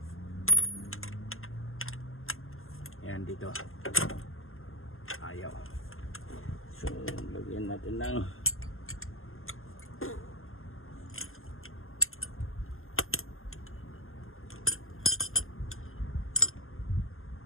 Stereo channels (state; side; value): late; right; 0.61 ms